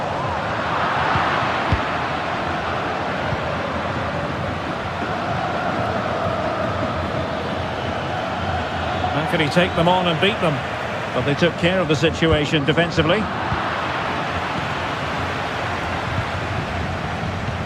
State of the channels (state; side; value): identical; both; correlation 1.00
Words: How can he take them on and beat them? But they took care of the situation defensively.